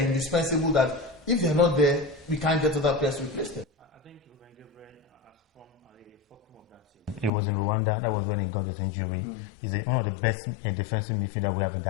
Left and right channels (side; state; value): right; drops out; at 7.3 s